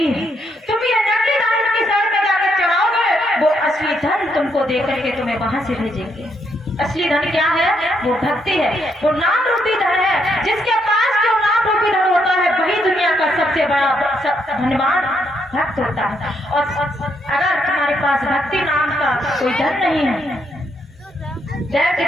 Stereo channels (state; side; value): normal; both; correlation 0.76